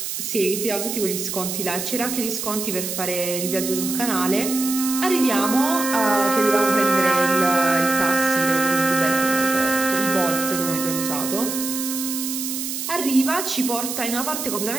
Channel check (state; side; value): noise; right; hiss, 4 dB below the sound